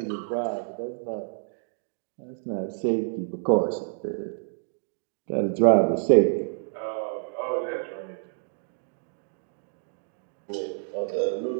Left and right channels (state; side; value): silent; left; digital silence